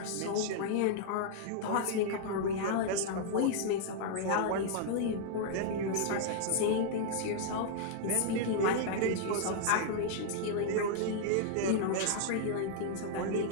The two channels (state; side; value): different; both; correlation -0.01